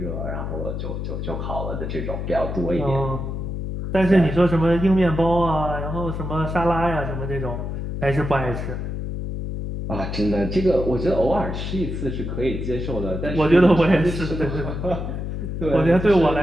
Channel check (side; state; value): left; noise; hum, 4 dB below the sound